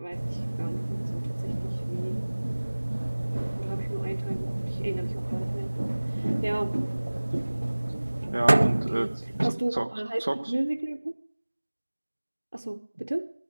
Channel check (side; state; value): both; inverted; correlation -1.00